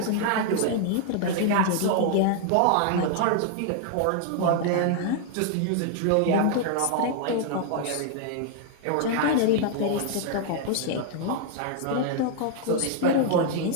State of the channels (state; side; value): different; both; correlation 0.00